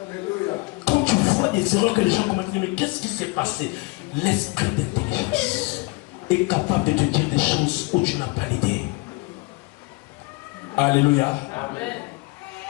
Quand tu vois des erreurs que les gens commettent, mais qu'est-ce qui s'est passé? L'esprit d'intelligence est capable de te dire des choses où tu n'as pas l'idée. Alléluia. Amen.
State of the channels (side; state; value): right; quieter; 25.5 dB